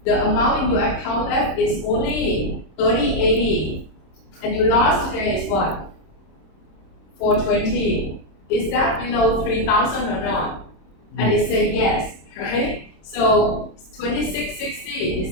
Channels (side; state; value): right; late; 26 ms